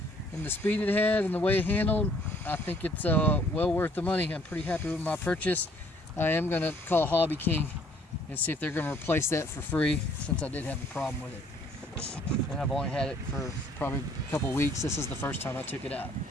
and the speed it had and the way it handled, I think it's well worth the money. I'm pretty happy with my purchase. I am going to call Hobbyking and see if they're going to replace that for free, since I did have a problem with it. And I've only had it for probably a couple weeks. This is the first time I took it out.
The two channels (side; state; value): both; normal; correlation 0.61